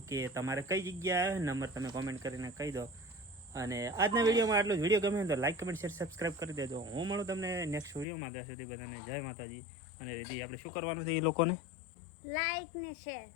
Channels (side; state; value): right; drops out; at 8.1 s